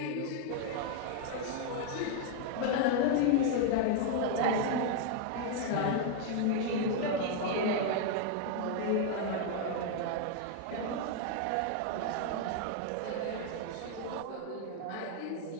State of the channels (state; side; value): different; both; correlation 0.00